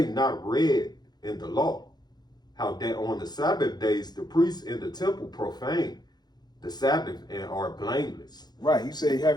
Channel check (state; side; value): late; right; 0.20 ms